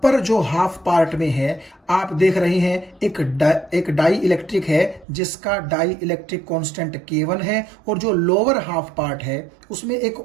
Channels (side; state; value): left; drops out; at 5.1 s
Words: जो हाफ पार्ट में है आप देख रहे हैं एक डाई इलेक्ट्रिक है जिसका डाई इलेक्ट्रिक कांस्टेंट K1 है, और जो लोअर हाफ पार्ट है उसमें एक